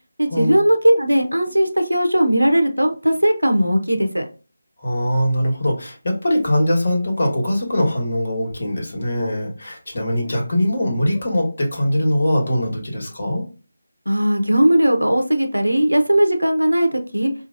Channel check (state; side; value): inverted; both; correlation -0.96